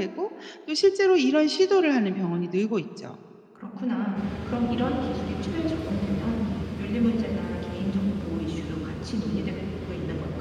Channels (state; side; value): identical; both; correlation 1.00